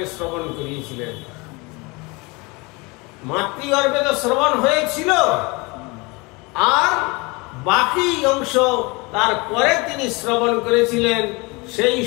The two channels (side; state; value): right; quieter; 26.5 dB